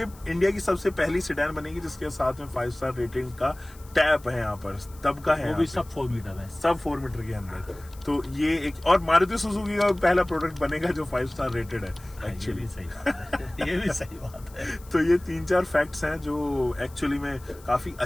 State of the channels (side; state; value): left; noise; hiss, 24 dB below the sound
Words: इंडिया की सबसे पहली सेडान बनेगी जिसके साथ में 5 स्टार रेटिंग का टैप है यहाँ पर, तब का है वो यहाँ भी पे। सब 4 मीटर है। सब 4 मीटर के अंदर। तो ये एक और मारुति सुजुकी का पहला प्रोडक्ट बनेगा जो 5 स्टार रेटेड है ये एक्चुअली। भी सही बात है। ये भी सही बात है। तो ये 3-4 फैक्ट्स हैं जो एक्चुअली में काफी